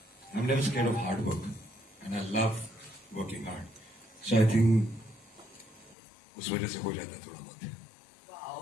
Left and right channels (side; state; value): right; drops out; at 6.0 s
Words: I'm never scared of hard work, and I love working hard. So I think उस वजह से हो जाता है थोड़ा बहुत.